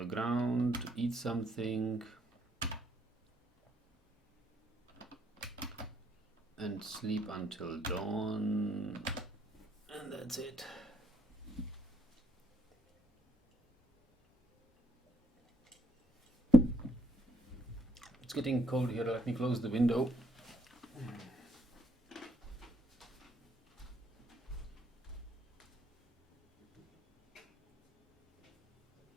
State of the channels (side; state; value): both; normal; correlation 0.71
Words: ground, eat something, and sleep until dawn. And that's it. It's getting cold here. Let me close the window.